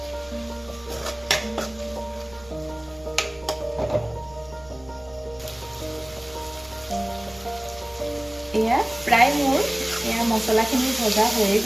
এয়া প্ৰায় মোৰ এয়া মছলাখিনি ভজা হৈয়ে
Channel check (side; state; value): right; noise; rumble, 24 dB below the sound